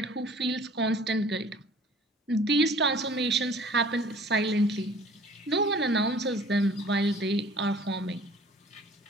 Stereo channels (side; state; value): both; normal; correlation 0.50